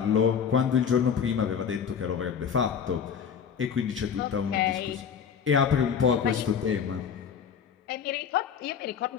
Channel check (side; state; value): right; quieter; 7.3 dB